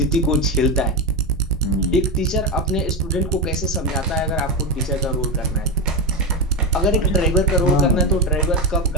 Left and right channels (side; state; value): both; normal; correlation 0.12